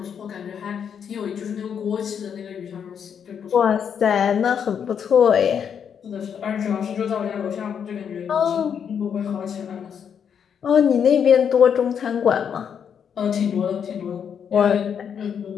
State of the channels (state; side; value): quieter; right; 7.7 dB